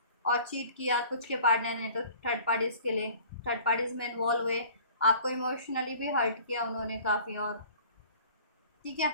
और चीट किया कुछ के पार्टनर ने तो थर्ड पार्टीज़ के लिए, थर्ड पार्टीज़ में इन्वॉल्व हुए, आपको इमोशनली भी हर्ट किया उन्होंने काफ़ी, और ठीक है,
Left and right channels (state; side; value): inverted; both; correlation -0.48